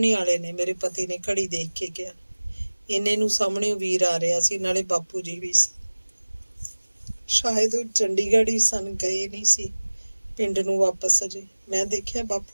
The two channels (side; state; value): both; inverted; correlation -1.00